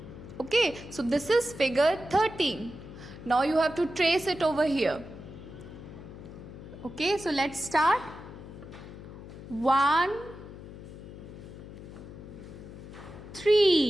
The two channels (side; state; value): left; noise; hum, 14 dB below the sound